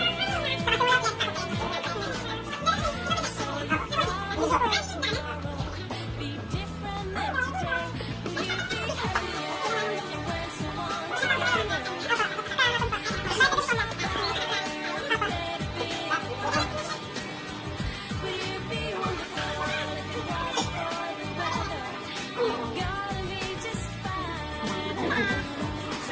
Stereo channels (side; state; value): both; identical; correlation 1.00